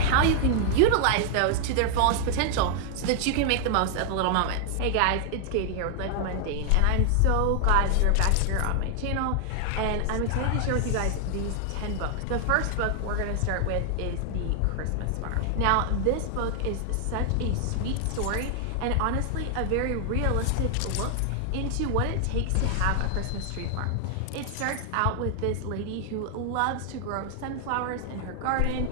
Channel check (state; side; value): different; both; correlation 0.00